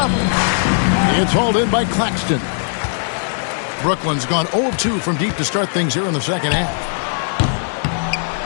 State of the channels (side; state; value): right; silent; digital silence